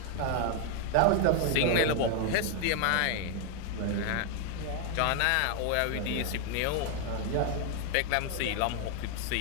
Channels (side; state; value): both; different; correlation 0.00